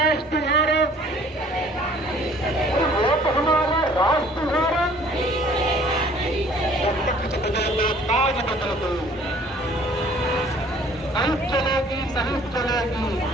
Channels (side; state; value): both; normal; correlation 0.55